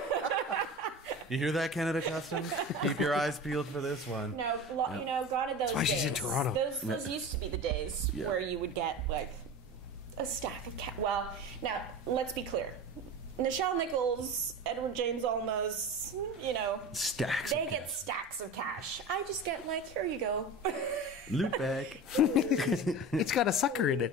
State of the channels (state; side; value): normal; both; correlation 0.30